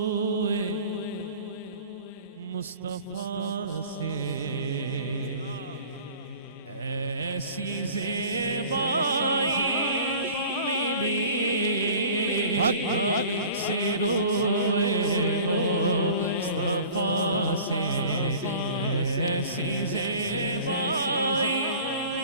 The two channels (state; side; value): inverted; both; correlation -0.45